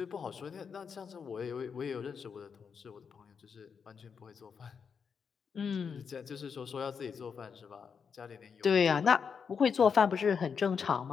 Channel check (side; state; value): right; quieter; 6.3 dB